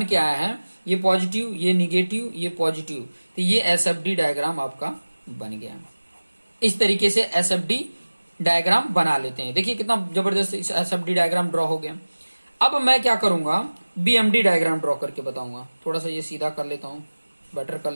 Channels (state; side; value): inverted; both; correlation -1.00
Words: के आया है, ये पॉजिटिव, ये निगेटिव, ये पॉजिटिव, तो ये एसएफडी डायग्राम आपका बन गया। इस तरीके से एसएफडी डायग्राम बना लेते हैं। देखिए कितना जबरदस्त एसएफडी डायग्राम ड्रॉ हो गया। अब मैं क्या करूंगा, बीएमडी डायग्राम ड्रॉ करके बताऊंगा। थोड़ा सा ये सीधा कर लेता हूं, बेटर कर